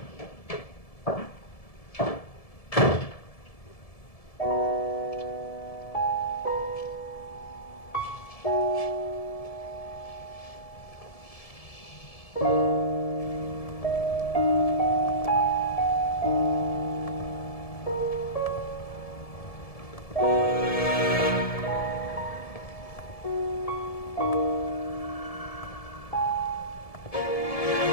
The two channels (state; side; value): late; right; 1.7 ms